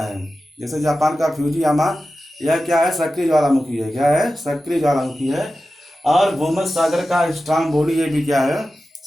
है। जैसे जापान का फ्यूजियामा, यह क्या है? सक्रिय ज्वालामुखी है। क्या है? सक्रिय ज्वालामुखी है। और भूमध्य सागर का स्ट्रोम्बोली, ये भी क्या है?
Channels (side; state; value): both; normal; correlation 0.93